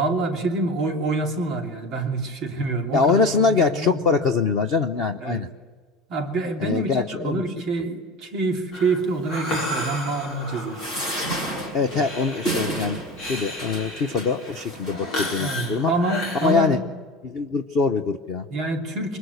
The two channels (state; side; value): normal; both; correlation 0.31